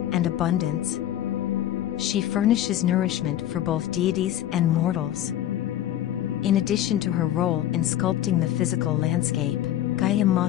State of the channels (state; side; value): quieter; right; 12.3 dB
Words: and abundance. She furnishes nourishment for both deities and mortals. In addition to her role in sculpting the physical landscape, Gaia